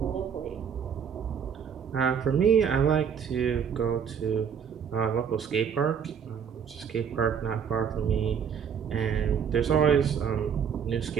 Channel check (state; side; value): quieter; left; 7.5 dB